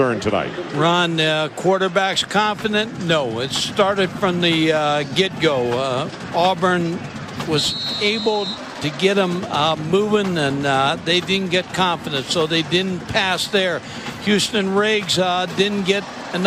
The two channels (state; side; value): identical; both; correlation 1.00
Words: tonight. Ron, quarterback's confident? No, it started from the get-go. Auburn was able to get them moving, and they didn't get confident, so they didn't pass there. Houston Riggs didn't get